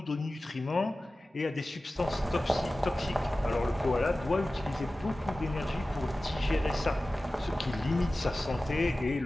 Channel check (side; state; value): both; normal; correlation 0.96